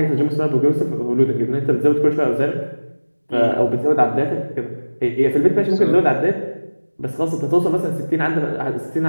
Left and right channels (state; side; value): inverted; both; correlation -1.00